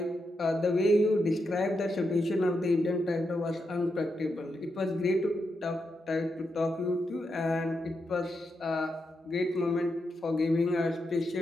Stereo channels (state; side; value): normal; both; correlation 0.84